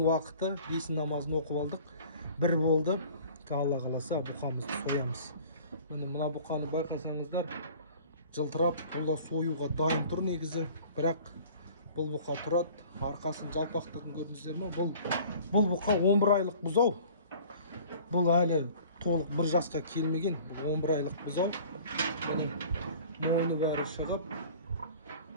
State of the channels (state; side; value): inverted; both; correlation -0.48